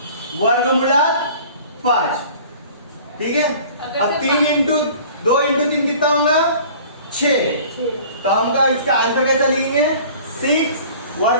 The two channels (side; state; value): both; inverted; correlation -0.46